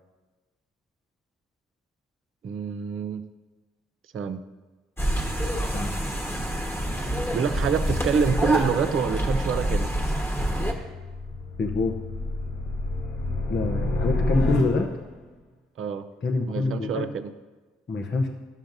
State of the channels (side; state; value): both; normal; correlation 0.74